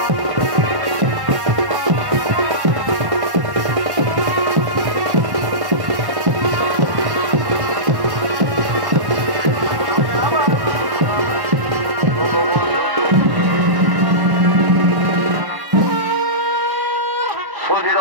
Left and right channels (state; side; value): late; left; 1.1 ms